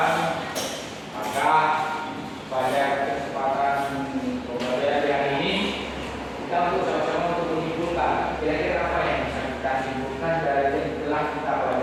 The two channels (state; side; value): identical; both; correlation 1.00